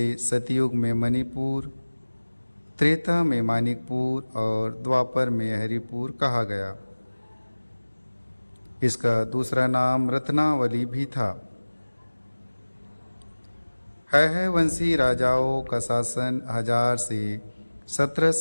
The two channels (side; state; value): both; inverted; correlation -1.00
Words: सतयुग में मणिपुर, त्रेता में मानिकपुर और द्वापर में हरिपुर कहा गया। इसका दूसरा नाम रत्नावली भी था। है वंशी राजाओं का शासन 1000 से